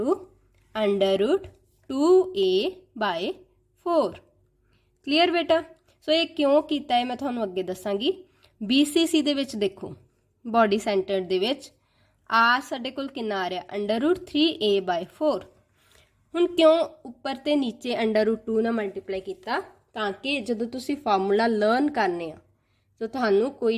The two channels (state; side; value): identical; both; correlation 1.00